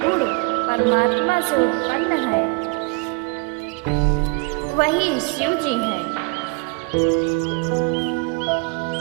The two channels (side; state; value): left; quieter; 30.4 dB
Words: परमात्मा से उत्पन्न है वही शिव जी हैं।